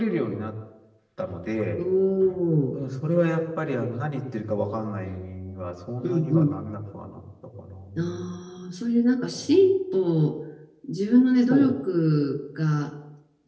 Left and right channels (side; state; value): both; identical; correlation 1.00